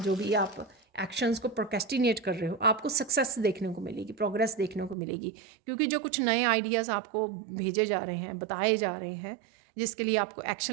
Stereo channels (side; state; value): left; drops out; at 5.0 s